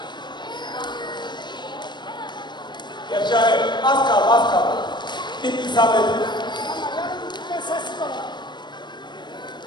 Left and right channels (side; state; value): right; late; 0.22 ms